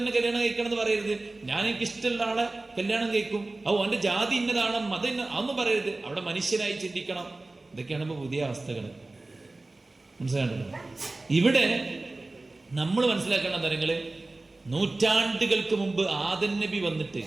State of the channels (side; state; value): left; quieter; 3.1 dB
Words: കല്യാണം കഴിക്കണം എന്ന് പറയരുത്. ഞാൻ എനിക്ക് ഇഷ്ടമുള്ള ആളെ കല്യാണം കഴിക്കും, അവന്റെ ജാതി ഇന്നതാണ്, മതം അതൊന്നും പറയരുത്. അവിടെ മനുഷ്യനായി ചിന്തിക്കണം. ഇതൊക്കെയാണ് ഇപ്പൊ പുതിയ അവസ്ഥകൾ. മനസ്സിലാണ്ടല്ലോ? ഇവിടെ നമ്മൾ മനസ്സിലാക്കേണ്ട കാര്യങ്ങള്, നൂറ്റാണ്ടുകൾക്ക് മുമ്പ് ആദം നബി വന്നിട്ട്